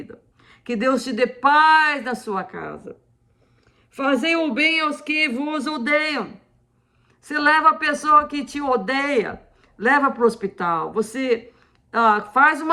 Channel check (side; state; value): both; identical; correlation 1.00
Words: que Deus te dê paz na sua casa. Fazei o bem aos que vos odeiam. Você leva a pessoa que te odeia, leva para o hospital. Você faz